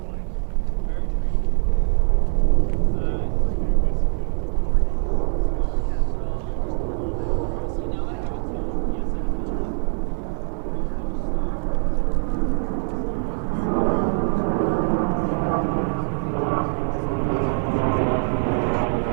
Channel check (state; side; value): silent; left; 61 dB below the other